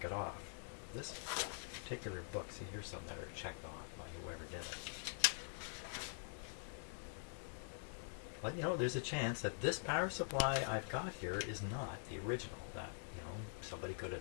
it off. This particular book, see, here's some that are checked off by whoever did it. But you know, there's a chance that this power supply I've got here is not the original. That, you know, somebody could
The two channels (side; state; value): right; silent; digital silence